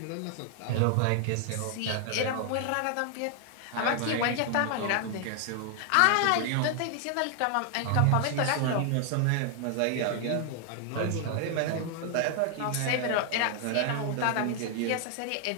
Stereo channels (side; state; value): both; different; correlation 0.00